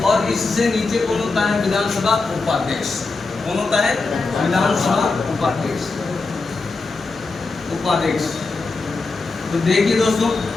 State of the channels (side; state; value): right; quieter; 3.8 dB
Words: और इससे नीचे कौन होता है? विधानसभा उपाध्यक्ष। कौन होता है? विधानसभा उपाध्यक्ष। उपाध्यक्ष। तो देखिए दोस्तों,